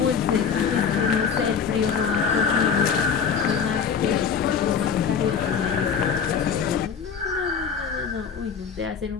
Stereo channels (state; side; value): quieter; right; 6.5 dB